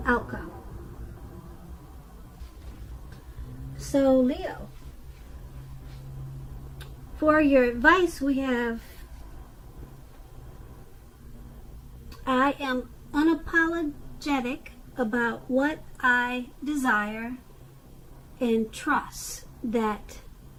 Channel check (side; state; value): both; identical; correlation 1.00